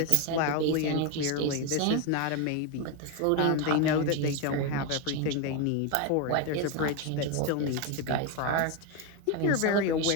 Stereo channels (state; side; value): different; both; correlation 0.02